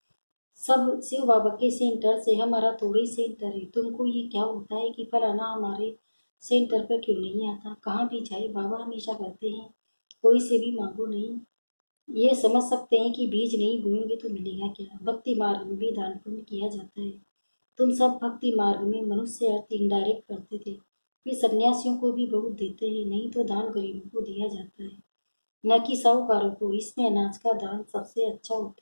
सब शिव बाबा के सेंटर से, हमारा थोड़ा ही सेंटर है। तुमको ये क्या होता है कि फलाना हमारे सेंटर पर क्यों नहीं आता। कहाँ भी जाए बाबा हमेशा कहते हैं कोई से भी मांगो नहीं। ये समझ सकते हैं कि बीज नहीं बोएंगे तो मिलेगा क्या। भक्ति मार्ग में भी दान पुण्य किया जाता है। तुम सब भक्ति मार्ग में मनुष्य अर्थ इनडायरेक्ट करते थे, फिर सन्यासियों को भी बहुत देते हैं, नहीं तो दान गरीबों को दिया जाता है, न कि साहूकारों को। इसमें अनाज का दान सबसे अच्छा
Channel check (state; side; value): inverted; both; correlation -1.00